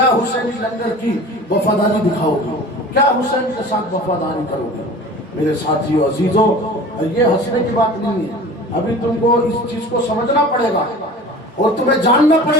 حسینی لنگر کی وفاداری دکھاؤ گے؟ کیا حسین کے ساتھ وفاداری کرو گے؟ میرے ساتھیو عزیزو، یہ ہنسنے کی بات نہیں ہے، ابھی تم کو اس چیز کو سمجھنا پڑے گا اور تمہیں جاننا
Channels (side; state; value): both; normal; correlation 0.40